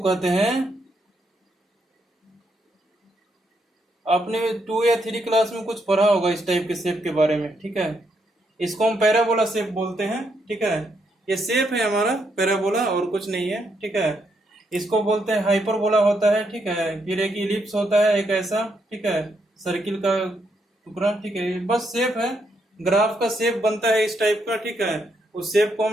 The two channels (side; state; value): both; normal; correlation 0.78